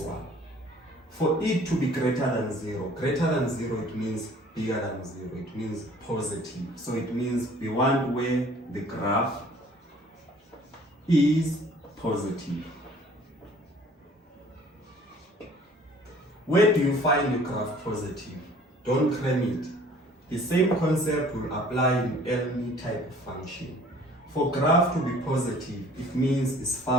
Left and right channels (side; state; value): both; normal; correlation 0.53